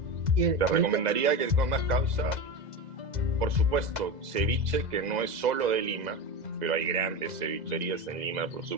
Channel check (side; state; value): left; late; 2.0 ms